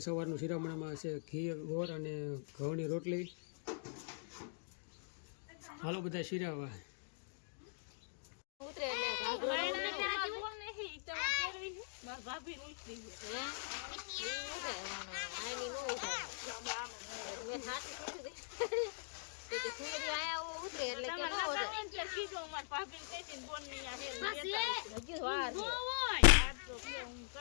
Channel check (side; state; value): right; silent; digital silence